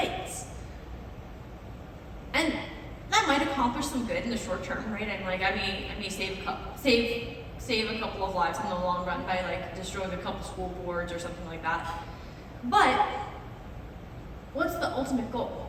And that might accomplish some good in the short term, right? I may save a couple of lives in the long run by like destroying a couple school boards or something like that. But what's the ultimate goal?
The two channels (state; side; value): identical; both; correlation 1.00